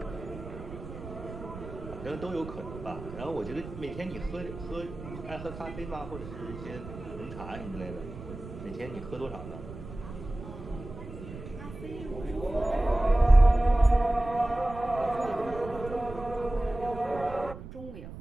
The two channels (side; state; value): right; noise; rumble, 12 dB below the sound